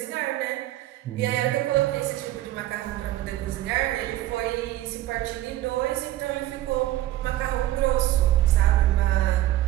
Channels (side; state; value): left; quieter; 14.9 dB